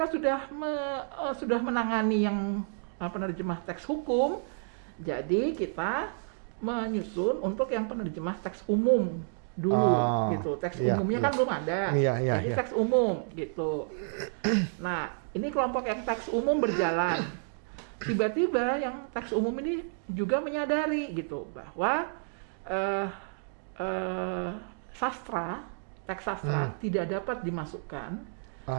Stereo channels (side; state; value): left; silent; digital silence